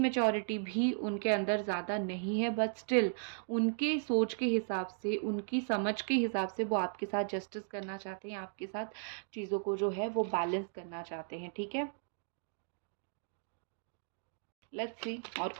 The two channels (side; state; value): left; silent; digital silence